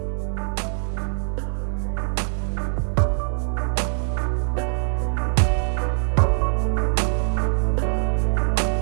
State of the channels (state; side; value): silent; left; 63 dB below the other